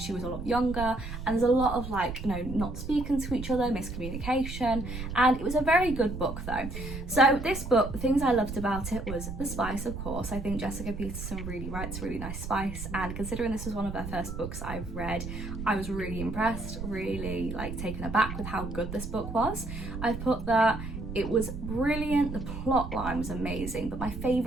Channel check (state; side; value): noise; right; rumble, 7 dB below the sound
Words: was a lot younger, and there's a lot of like, you know, not speaking to each other, miscommunication, and it was a very good book though. So this book, the things I loved about it was the spice, of course. I think Jessica Peterson really writes really nice spice, and considering this was one of her first books I've read, I was really impressed, really like taken aback with how good this book was. I've put that it was brilliant, the plot line was amazing, but my